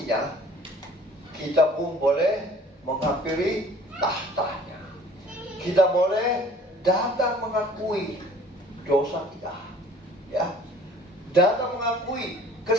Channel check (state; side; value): normal; both; correlation 0.51